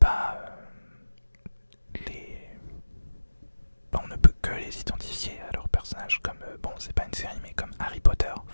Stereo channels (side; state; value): both; inverted; correlation -1.00